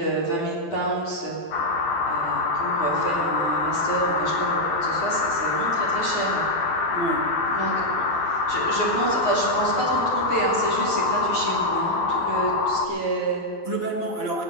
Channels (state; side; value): late; right; 12 ms